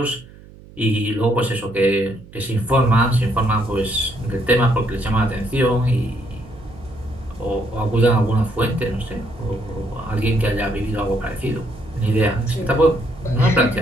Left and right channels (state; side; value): noise; right; hum, 21 dB below the sound